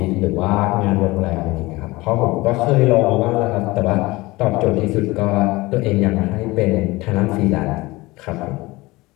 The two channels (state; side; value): quieter; right; 21.1 dB